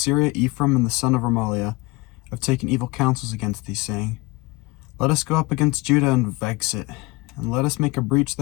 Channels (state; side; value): quieter; right; 23.3 dB